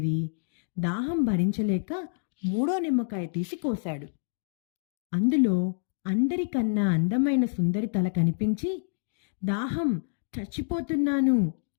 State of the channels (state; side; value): silent; right; digital silence